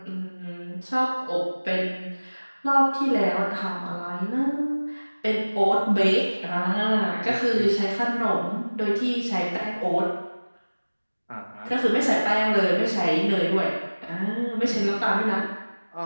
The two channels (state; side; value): inverted; both; correlation -1.00